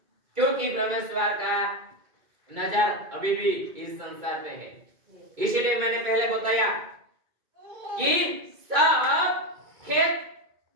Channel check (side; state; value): left; late; 2.3 ms